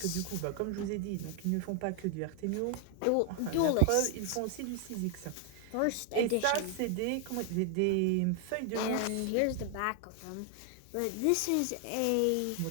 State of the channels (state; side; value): different; both; correlation 0.00